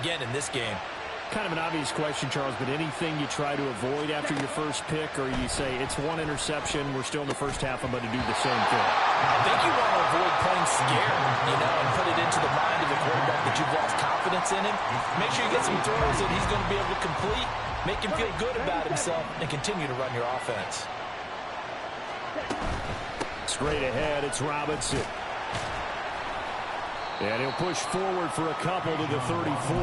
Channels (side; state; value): both; identical; correlation 1.00